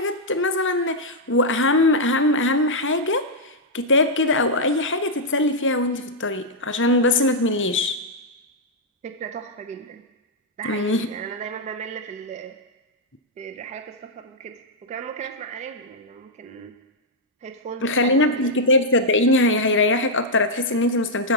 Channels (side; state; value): both; normal; correlation -0.05